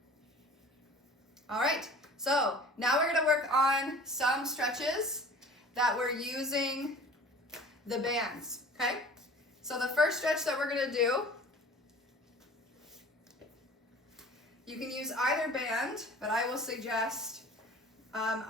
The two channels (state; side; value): normal; both; correlation 0.44